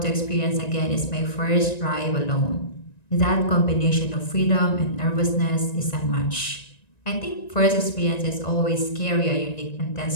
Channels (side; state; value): right; late; 1.9 ms